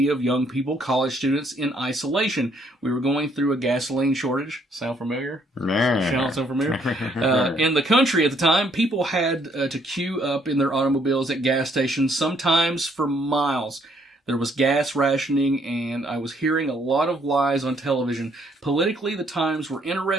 of young people, college students, in isolation. We were going through a gasoline shortage. Sound familiar? Sound familiar? In the country at the time, people had to queue up in their automobiles at gas stations, sometimes for miles. There was gas rationing, and I was hearing a lot of lies on television. Politically, the times were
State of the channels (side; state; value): both; normal; correlation 0.67